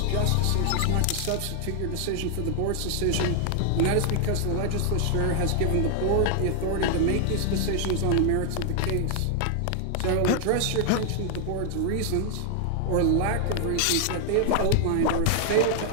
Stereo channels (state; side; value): different; both; correlation 0.00